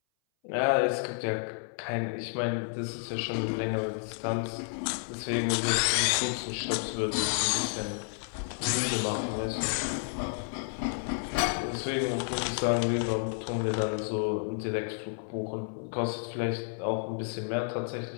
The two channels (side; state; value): right; silent; 57 dB below the other